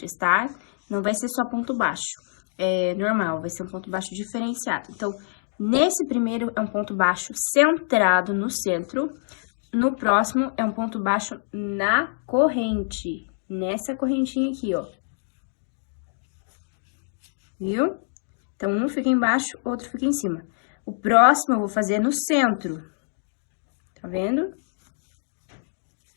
tá? Não vai ser só ponto baixo, é normal, vai ser um ponto baixo diferenciado. Então, nesse primeiro é um ponto baixo centrado no centro, no próximo é um ponto baixo na corrente, nessa correntinha aqui, ó. Viu? Então, um fica embaixo, outro fica em cima. O próximo eu vou fazer no centro. Tá vendo?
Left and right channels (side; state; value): right; silent; digital silence